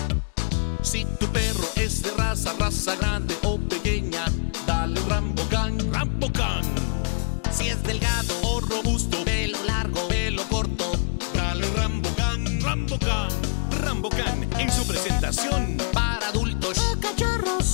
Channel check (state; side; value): silent; right; 62 dB below the other